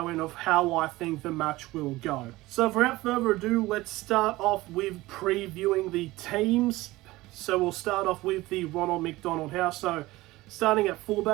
in of how I think the match will go. So without further ado, let's start off with previewing the teams. So we'll start off with the Ronald McDonald House. So starting at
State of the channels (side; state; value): left; quieter; 18.9 dB